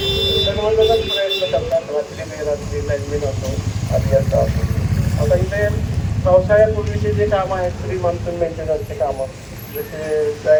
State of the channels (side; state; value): both; identical; correlation 1.00